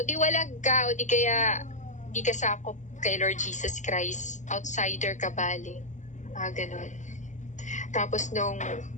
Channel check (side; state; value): right; late; 0.35 ms